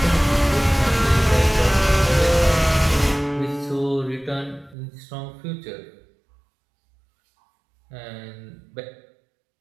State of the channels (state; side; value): drops out; left; at 4.8 s